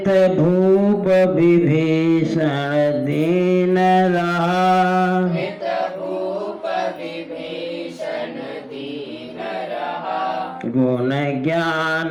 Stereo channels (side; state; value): both; identical; correlation 1.00